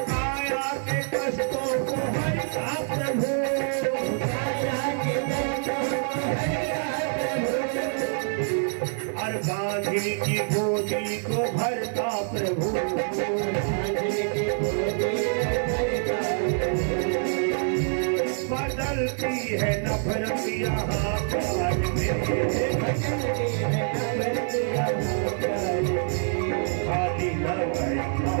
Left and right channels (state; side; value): silent; left; 58 dB below the other